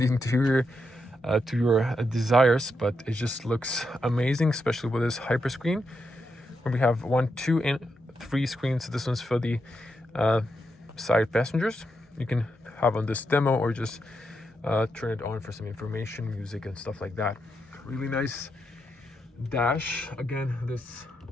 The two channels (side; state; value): both; normal; correlation 0.83